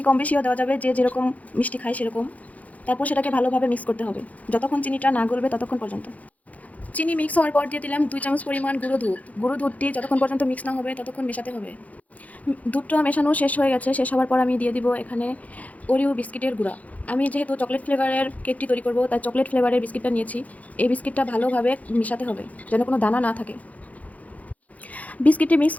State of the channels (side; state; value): right; late; 0.071 ms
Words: কম বেশিও দেওয়া যাবে, যে যেরকম মিষ্টি খায় সেরকম। তারপর সেটাকে ভালোভাবে মিক্স করতে হবে যতক্ষণ চিনিটা না গলবে ততক্ষণ পর্যন্ত। চিনি মিক্স হওয়ার পর দিয়ে দিলাম 2 চামচ পরিমাণ গুঁড়ো দুধ। গুঁড়ো দুধটি যতক্ষণ পর্যন্ত মিক্স না হবে ততক্ষণ মেশাতে হবে। দুধটা মেশানো শেষ হয়ে গেছে। শেষ হওয়ার পর আমি দিয়ে দিব এখানে ওরিও বিস্কিটের গুঁড়া। আমি যেহেতু চকলেট ফ্লেভারের কেকটি তৈরি করব, তাই চকলেট ফ্লেভারের বিস্কিটটা নিয়েছি। এই বিস্কিটটা ভালোভাবে মেশাতে হবে যেন কোনো দানা না থাকে। বিস্কিটটি মিক্স